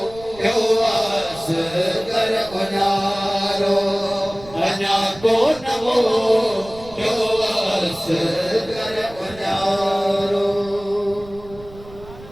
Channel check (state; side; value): noise; right; rumble, 19 dB below the sound